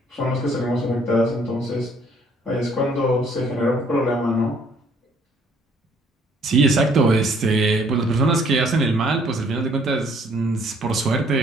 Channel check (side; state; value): both; normal; correlation 0.62